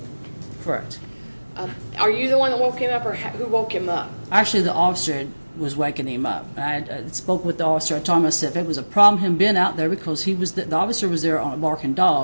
Correct. Are you the one that woke him up, or who woke him up? Actually, the officer was waking him up. I spoke with the officer. I told him, I said, if it was a problem him being out there, because the officer was there on a barking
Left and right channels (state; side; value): inverted; both; correlation -1.00